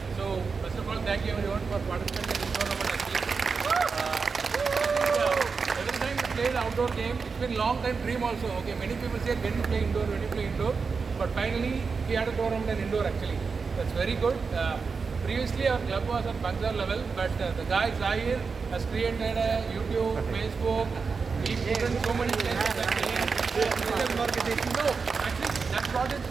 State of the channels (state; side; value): quieter; left; 5.0 dB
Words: so first of all, thank you everyone for participating in this tournament actually. Every time we play the outdoor game, it's been long time dream also. Okay, many people say when you play indoor, but finally we had a tournament in indoor actually. That's very good. Previously our club was at Bangalore level, but the guy Zahir has created a YouTube, Facebook. He put in so many players actually. No, actually that brought in